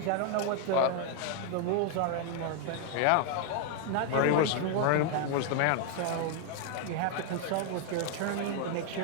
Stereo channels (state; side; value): different; both; correlation 0.00